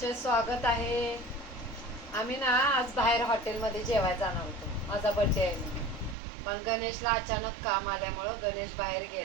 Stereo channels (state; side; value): drops out; left; at 6.2 s